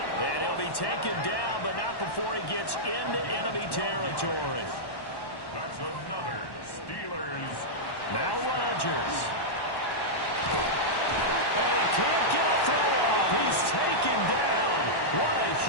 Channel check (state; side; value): late; right; 1.1 ms